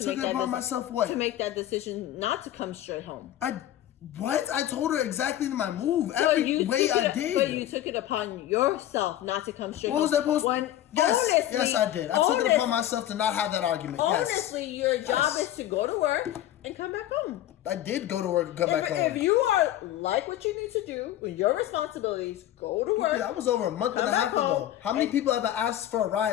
Took make it that upon myself what? to make that decision not to come straight home. What? I told her exactly my move. So Every way I did. But you took it upon yourself not to come straight What home. was that supposed to? Yes, honestly, yes, I did. I took it upon myself to not have that argument. Honestly, Yes. your job is to go to work and come back home. I did go to work and come back home. If you are like what you need to do with your responsibilities, go to work. That was over a month and a half ago. How many people have I asked for a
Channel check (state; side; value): quieter; right; 12.8 dB